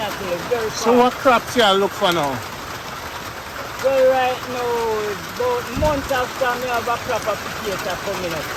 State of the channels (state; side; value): identical; both; correlation 1.00